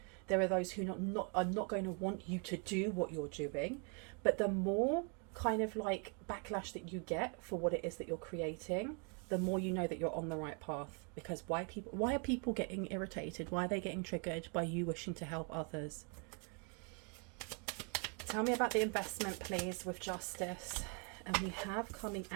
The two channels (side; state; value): left; quieter; 37.4 dB